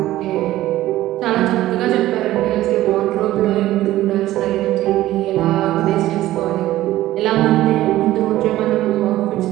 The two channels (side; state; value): left; quieter; 15.2 dB